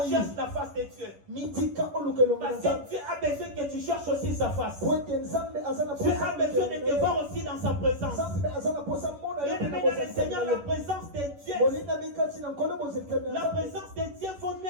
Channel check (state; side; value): late; left; 11 ms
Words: cherche la face de Dieu. Parce que Dieu a besoin que tu cherches aussi sa face. Dieu a besoin de te voir aussi dans sa présence. Bien-aimé dans le Seigneur, la présence de Dieu. La présence de Dieu vaut